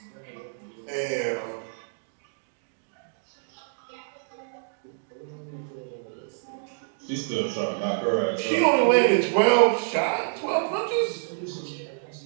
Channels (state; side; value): silent; left; digital silence